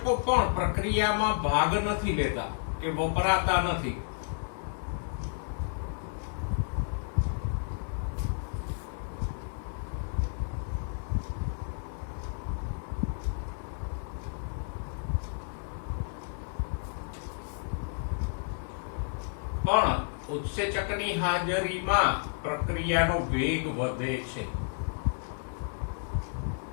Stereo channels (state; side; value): silent; right; digital silence